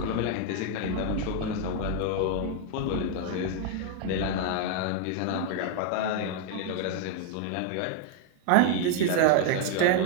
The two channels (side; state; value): both; different; correlation 0.00